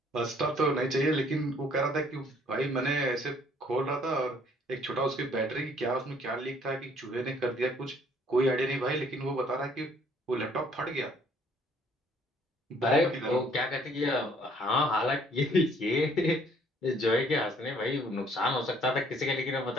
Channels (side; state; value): both; normal; correlation 0.61